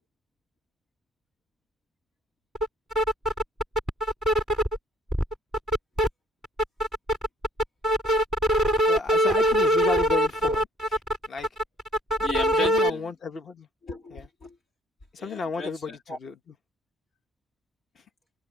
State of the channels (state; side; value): normal; both; correlation 0.59